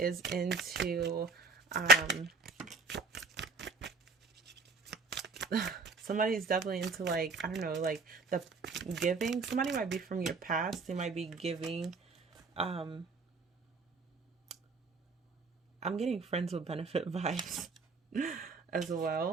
into somebody's definitely into, like, I don't know, like the giving. Somebody might be from your past. They might be giving. I'm getting friends with benefit vibes as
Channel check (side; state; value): left; quieter; 4.2 dB